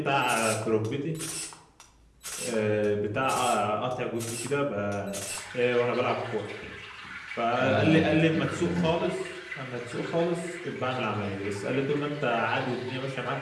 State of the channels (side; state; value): both; identical; correlation 1.00